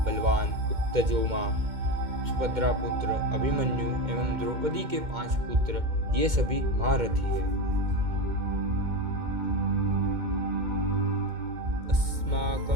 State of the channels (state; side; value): late; left; 2.1 ms